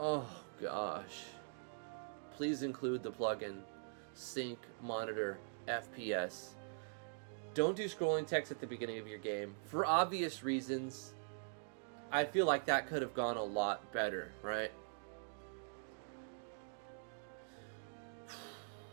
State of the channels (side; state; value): left; silent; digital silence